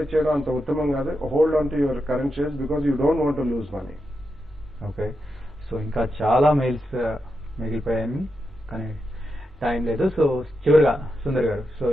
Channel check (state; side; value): normal; both; correlation 0.86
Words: చేయడం అంత ఉత్తమం కాదు. Hold on to your current shares because you don't want to lose money. Okay, so ఇంకా చాలా మెయిల్స్ మిగిలిపోయాయి కానీ టైం లేదు. సో చివరిగా సుందర్ గారు, సో